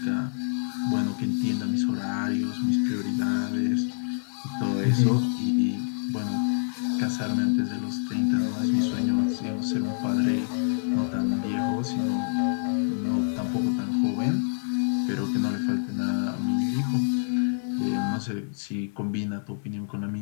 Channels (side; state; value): right; silent; digital silence